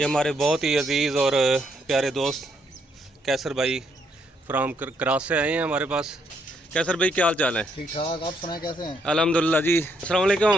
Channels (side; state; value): both; normal; correlation 0.74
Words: हमारे बहुत ही अजीज़ और प्यारे दोस्त कैसर भाई फ्राम क्रास से आए हैं हमारे पास। कैसर भाई, क्या हाल चाल है? ठीक ठाक, आप सुनाए कैसे हैं? अल्हम्दुलिल्लाह जी। अस्सलाम